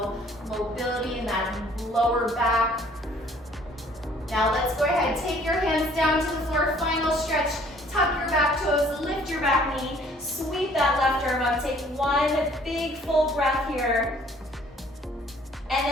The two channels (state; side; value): normal; both; correlation 0.58